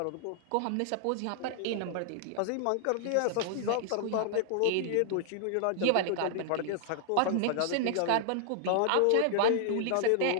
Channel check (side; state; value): both; different; correlation 0.00